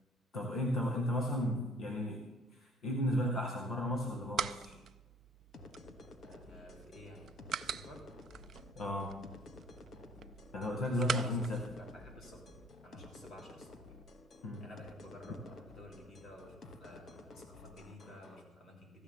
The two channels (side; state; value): both; normal; correlation 0.55